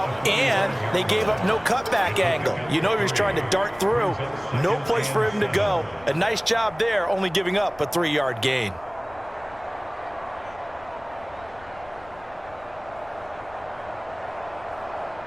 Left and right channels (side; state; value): left; noise; rumble, 23 dB below the sound